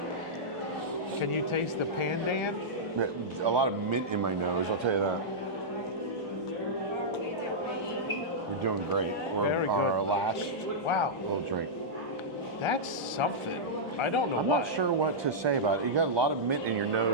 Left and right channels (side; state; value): both; normal; correlation -0.10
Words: Can you taste the Pandan? a lot of mint in my nose. I'll tell you that. We're doing great. We're Very on good. our last Wow, little drink. that's something. I don't know I'm what. not sure what to say about it. You got a lot of mint in your